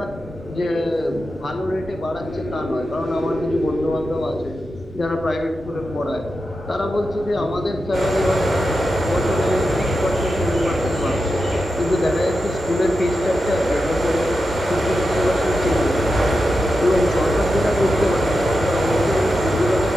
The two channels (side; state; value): both; normal; correlation 0.90